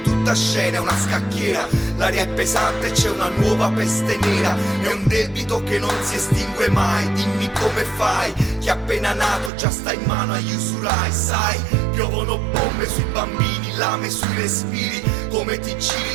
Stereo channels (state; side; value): drops out; left; at 9.5 s